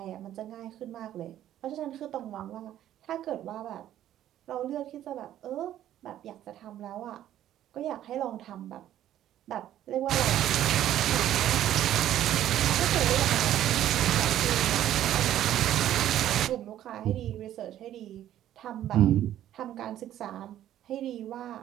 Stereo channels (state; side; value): quieter; left; 12.1 dB